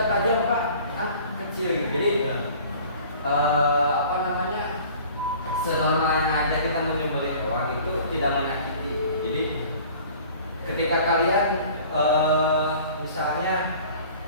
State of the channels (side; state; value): both; inverted; correlation -0.47